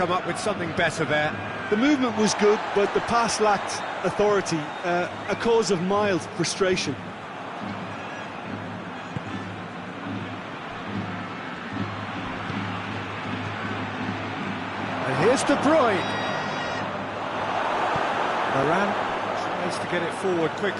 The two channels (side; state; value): both; identical; correlation 1.00